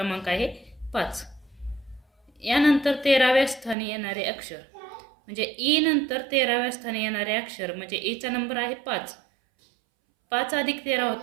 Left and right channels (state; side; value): drops out; left; at 3.8 s